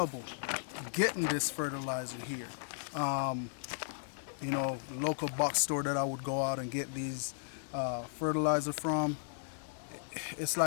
getting this fertilizer here. You know, the local box store that I would go out and get these fertilizer from, it's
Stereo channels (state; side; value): silent; right; digital silence